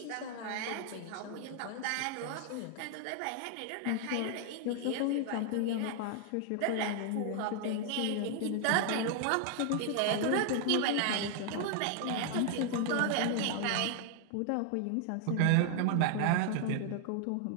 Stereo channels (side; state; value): both; different; correlation 0.00